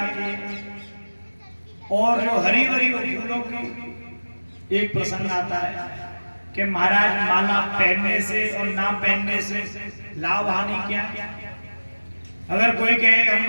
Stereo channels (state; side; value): inverted; both; correlation -1.00